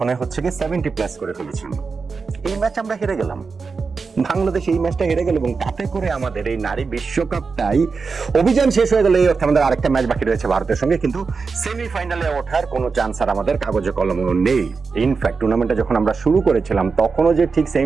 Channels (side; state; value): left; quieter; 4.8 dB